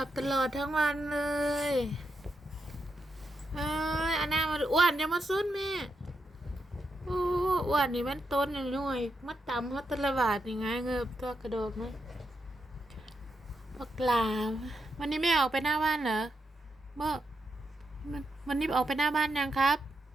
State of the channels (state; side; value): normal; both; correlation 0.84